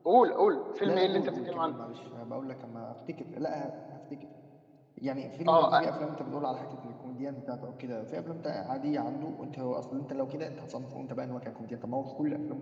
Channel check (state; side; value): identical; both; correlation 1.00